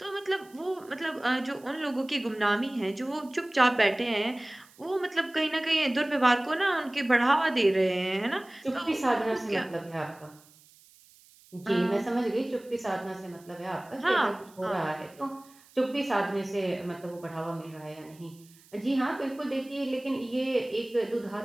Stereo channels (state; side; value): noise; right; hiss, 26 dB below the sound